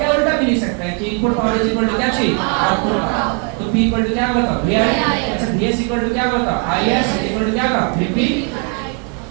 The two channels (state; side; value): quieter; left; 39.2 dB